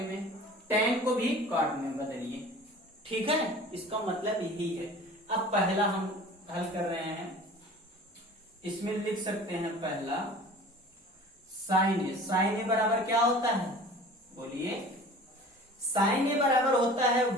में, tan को भी काट में बदलिए, ठीक है। इसका मतलब यही है। अब पहला हम हल कर रहे हैं, इसमें लिख सकते हैं पहला साइन ए। साइन ए बराबर क्या होता है, बोलिए। साइन ए बराबर होता है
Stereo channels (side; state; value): both; normal; correlation 0.43